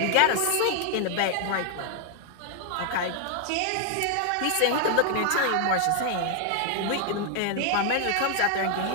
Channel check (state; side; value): different; both; correlation 0.00